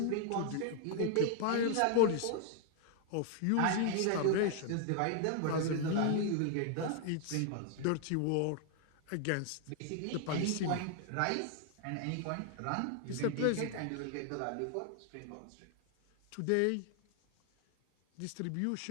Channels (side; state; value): both; different; correlation 0.00